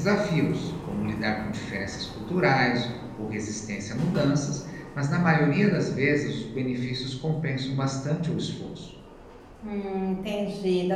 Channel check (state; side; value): identical; both; correlation 1.00